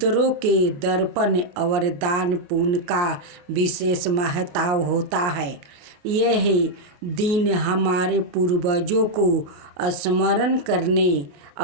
के दर्पण और दान पुण्य का विशेष महत्व होता है। यह दिन हमारे पूर्वजों को स्मरण करने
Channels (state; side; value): late; left; 28 ms